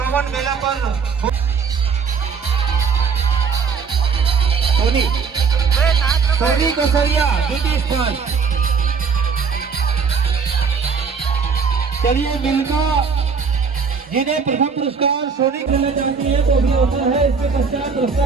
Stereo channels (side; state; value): left; quieter; 5.6 dB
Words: मेला पर सोनी कसरिया द्वितीय स्थान। चलिए मिलका जिन्हें प्रथम पुरस्कार सोनी खेलना चाहती है तो भी अवसर है, इसके पश्चात रस्ता